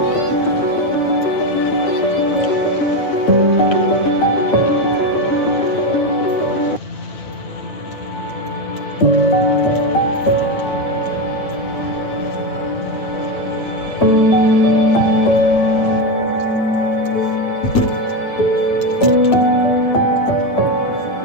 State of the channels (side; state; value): right; late; 9.1 ms